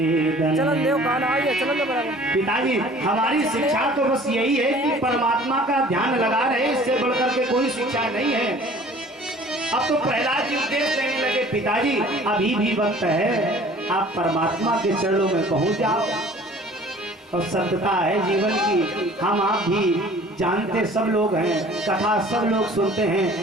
पिताजी हमारी शिक्षा तो बस यही है कि परमात्मा का ध्यान लगा रहे, इससे बढ़कर के कोई शिक्षा नहीं है। अब तो प्रहलाद जी उपदेश देने लगे, पिताजी अभी भी वक्त है, आप परमात्मा के चरणों में पहुंच जाओ। और सत्यता है जीवन की, हम आप भी जानते सब लोग हैं, कथा सब लोग सुनते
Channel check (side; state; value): both; normal; correlation 0.49